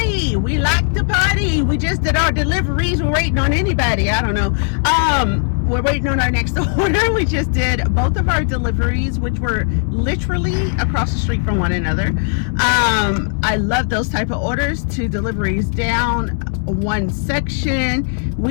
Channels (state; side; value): silent; right; digital silence